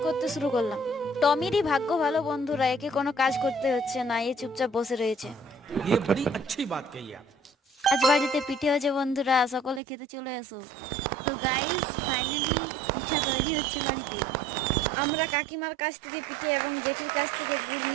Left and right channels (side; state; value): left; drops out; at 9.8 s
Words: করতে শুরু করলাম। টমিরই ভাগ্য ভালো বন্ধুরা, একে কোনো কাজ করতে হচ্ছে না, এ চুপচাপ বসে রয়েছে। ये बड़ी अच्छी बात कही आप। আজ বাড়িতে পিঠে হচ্ছে বন্ধুরা, সকলে খেতে চলে আসো। তো গাইস, ফাইনালি পিঠা তৈরি হচ্ছে বাড়িতে। আমরা কাকিমার কাছ থেকে পিঠে এবং জেঠির কাছ থেকে গুড়